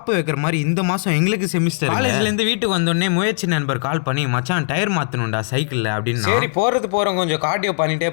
வைக்கிற மாதிரி இந்த மாசம் எங்களுக்கு செமிஸ்டர். காலேஜ்ல இருந்து வீட்டுக்கு வந்தோடனே முயற்சி நண்பர் கால் பண்ணி மச்சான் டயர் மாத்தணும்டா சைக்கிள்ல அப்படின்னு. சரி போறோம் கொஞ்சம் கார்டியோ பண்ணிட்டே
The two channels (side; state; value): right; silent; digital silence